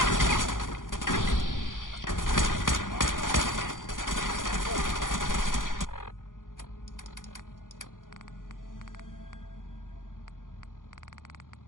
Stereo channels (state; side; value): late; right; 0.89 ms